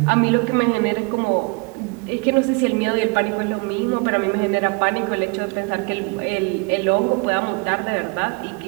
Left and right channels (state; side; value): quieter; left; 30.9 dB